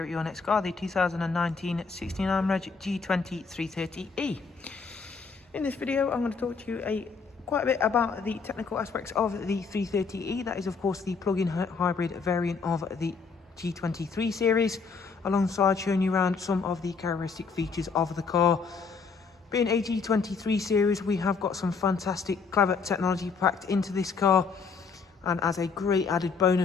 at your next car, the 2019 69 Reg G20 330e. In this video I'm going to talk to you quite a bit about the technical aspects of the 330e. That is of course the plug-in hybrid variant of the G23 series, alongside showing you around some of the characteristic features of the car. Being a G23 series, we have got some fantastic clever technology packed into this car. And as a great added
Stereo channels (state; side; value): quieter; right; 5.0 dB